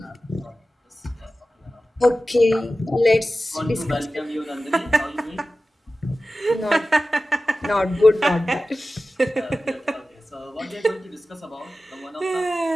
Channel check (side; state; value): both; normal; correlation 0.95